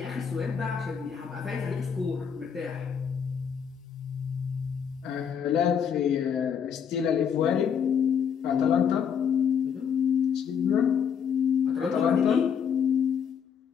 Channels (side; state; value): right; quieter; 7.5 dB